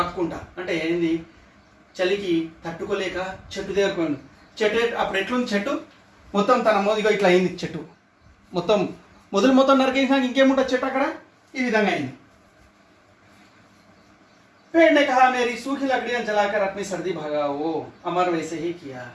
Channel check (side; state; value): both; identical; correlation 1.00